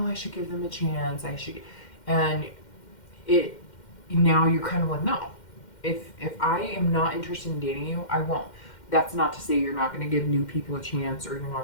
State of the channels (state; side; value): late; right; 2.1 ms